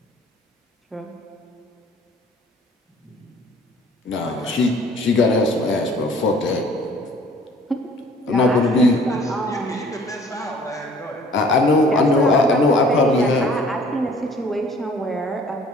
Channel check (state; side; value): normal; both; correlation 0.53